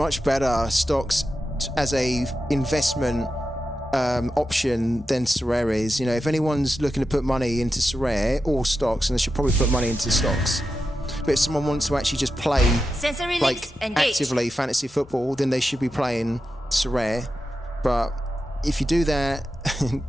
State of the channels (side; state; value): both; normal; correlation 0.90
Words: better stocks as a investment option than sorare is. You know, if anyone's looking to put money into sorare or stocks, and they should probably put money into stocks. But if someone wants to actually just play like actively fantasy football, then they should be playing sorare. But if you do that,